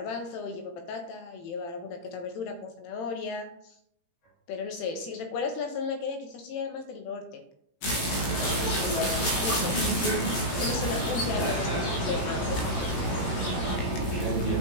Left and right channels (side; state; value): right; late; 18 ms